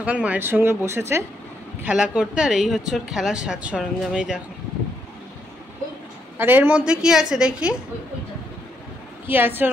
মায়ের সঙ্গে বসেছে খেলা করতে, আর এই হচ্ছে ওর খেলার সাজ সরঞ্জাম। এই দেখো, আর এর মধ্যে কি আছে দেখি, কি আছে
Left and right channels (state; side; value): normal; both; correlation 0.77